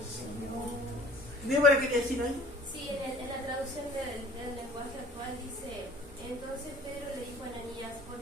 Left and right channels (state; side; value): normal; both; correlation 0.49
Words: ¿Débora quería decir algo? Sí, en la traducción del lenguaje actual dice, entonces Pedro le dijo a Ananías, ¿por